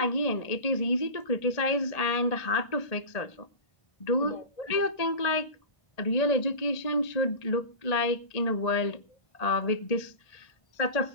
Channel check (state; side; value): late; right; 1.8 ms